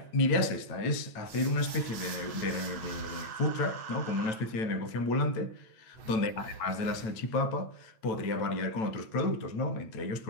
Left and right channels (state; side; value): late; right; 9.0 ms